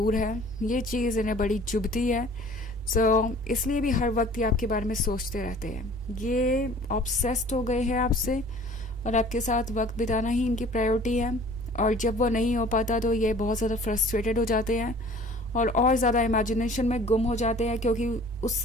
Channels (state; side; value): normal; both; correlation 0.49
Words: है। ये चीज़ इन्हें बड़ी चुभती है। सो इसलिए भी हर वक्त ये आपके बारे में सोचते रहते हैं। ये ऑब्सेस्ड हो गए हैं आपसे और आपके साथ वक्त बिताना ही इनकी प्रायोरिटी है। और जब वो नहीं हो पाता तो ये बहुत ज़्यादा फ्रस्ट्रेटेड हो जाते हैं और ज़्यादा इमेजिनेशन में गुम हो जाते हैं, क्योंकि